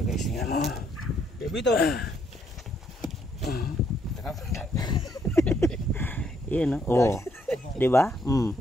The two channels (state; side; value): normal; both; correlation 0.71